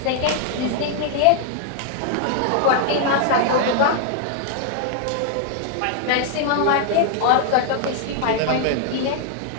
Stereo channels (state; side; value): different; both; correlation 0.00